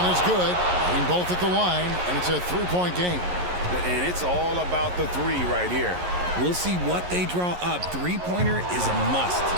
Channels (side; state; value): left; late; 11 ms